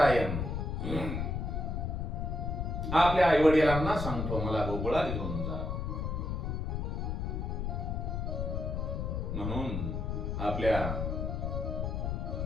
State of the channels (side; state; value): left; noise; rumble, 2 dB below the sound